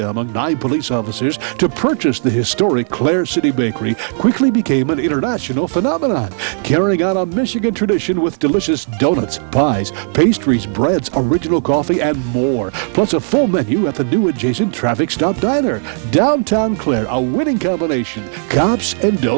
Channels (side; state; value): left; silent; digital silence